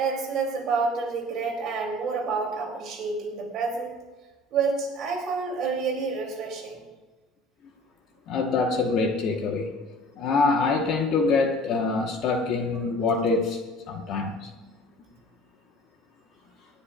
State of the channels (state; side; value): normal; both; correlation 0.45